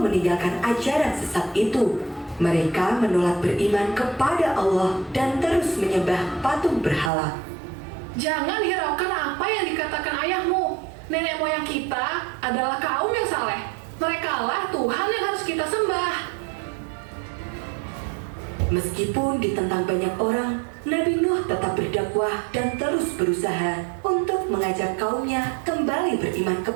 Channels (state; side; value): drops out; left; at 7.1 s